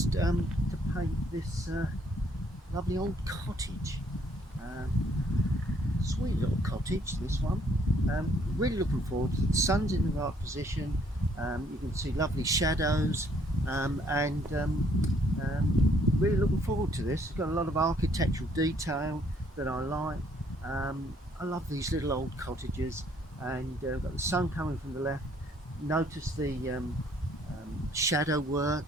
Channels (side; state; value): both; normal; correlation 0.65